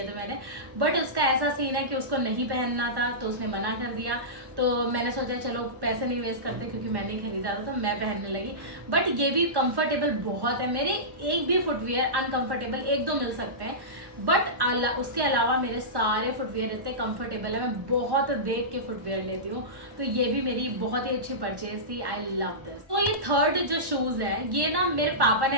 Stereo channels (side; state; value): left; late; 1.1 ms